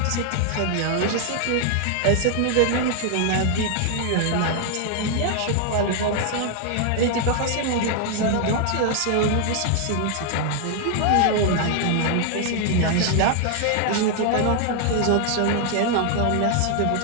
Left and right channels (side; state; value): both; different; correlation 0.00